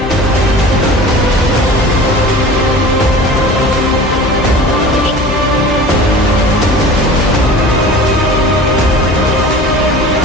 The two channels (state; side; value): normal; both; correlation 0.40